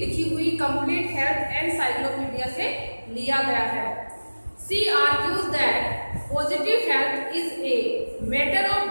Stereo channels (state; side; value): inverted; both; correlation -1.00